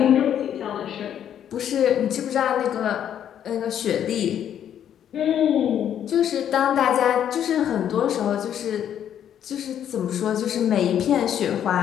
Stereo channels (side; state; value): right; quieter; 9.8 dB